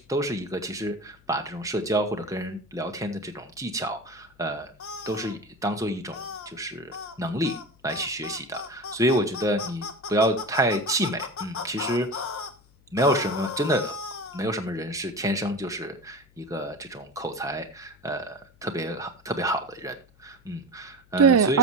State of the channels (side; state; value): left; noise; hum, 29 dB below the sound